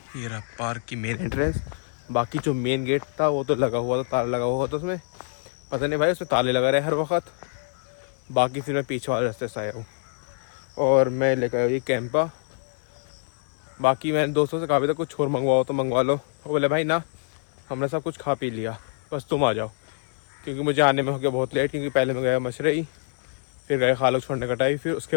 रहा पार्क की मेन एंट्रेंस। बाकी जो मेन गेट था वो तो लगा हुआ था, ताला लगा हुआ था उसमें। पता नहीं भाई उसमें ताले लगा रहे हर वक्त। बाकी फिर मैं पीछे वाले रास्ते से आया हूँ, और मैं लेकर आया ये कैंपा। बाकी मैंने दोस्तों से कहा भी था कुछ और मंगवाओ तो मंगवा लो। वो बोले भाई ना, हमने सब कुछ खा पी लिया, बस तुम आ जाओ। क्योंकि मुझे आने में हो गया बहुत लेट, क्योंकि पहले मैं गया मशरई, फिर गए खालक छोड़ने कटाई, फिर उसके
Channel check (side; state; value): right; silent; digital silence